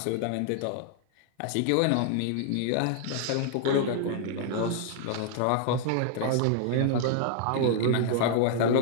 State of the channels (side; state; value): both; different; correlation -0.01